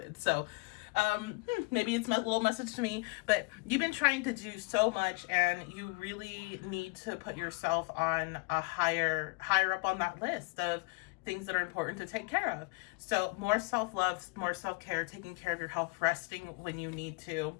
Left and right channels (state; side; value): quieter; right; 28.7 dB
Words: So maybe it's a little message to me, but you've been trying to do so much, and you really need to put yourself on a higher up on that list of things that are important to take care of. So more self-love, more self-care, taking care of your health, resting when you need to.